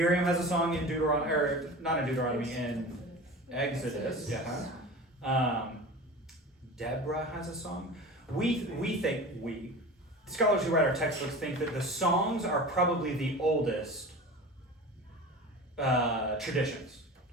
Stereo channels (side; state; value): both; normal; correlation 0.34